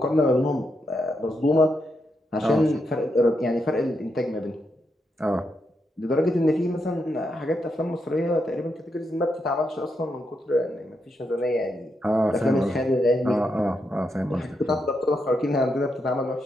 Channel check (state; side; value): normal; both; correlation 0.82